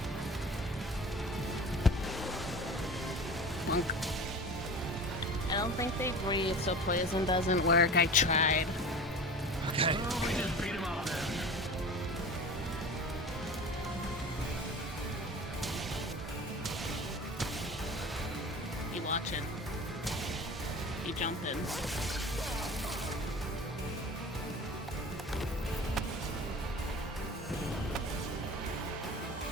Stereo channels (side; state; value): both; normal; correlation 0.36